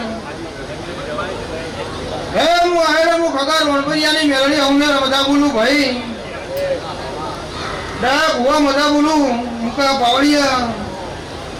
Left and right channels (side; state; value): both; identical; correlation 1.00